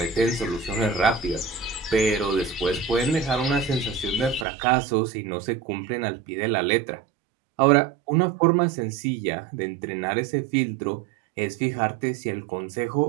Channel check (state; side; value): drops out; left; at 4.5 s